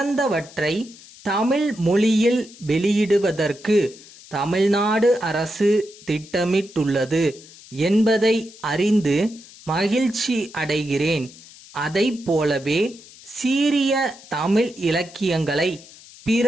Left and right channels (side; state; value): left; noise; hiss, 21 dB below the sound